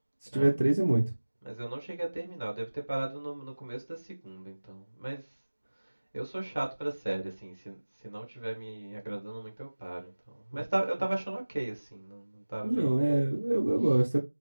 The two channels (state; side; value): inverted; both; correlation -1.00